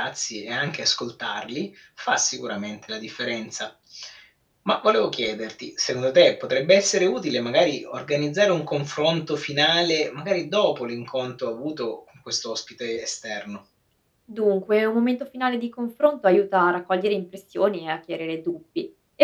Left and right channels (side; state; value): both; identical; correlation 1.00